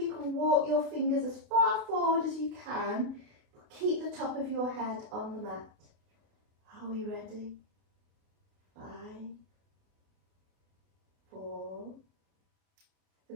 can walk your fingers as far forward as you can, but keep the top of your head on the mat. Are we ready? 5, 4,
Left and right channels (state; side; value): late; left; 29 ms